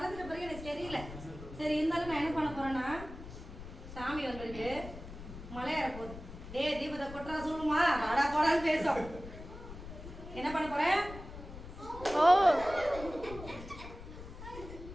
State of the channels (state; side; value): noise; left; rumble, 13 dB below the sound